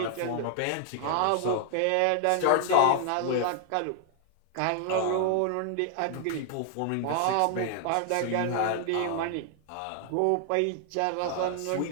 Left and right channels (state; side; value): different; both; correlation 0.00